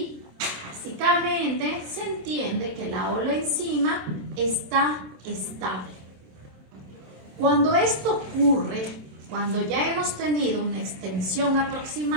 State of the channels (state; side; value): late; left; 27 ms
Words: básicamente, se entiende que la holoenzima está estable. Cuando esto ocurre, cuando ya hemos tenido una extensión